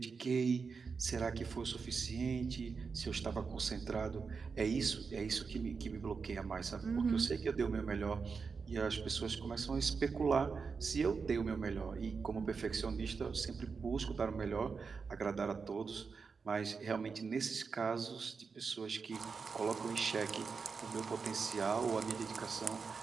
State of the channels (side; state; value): left; quieter; 5.2 dB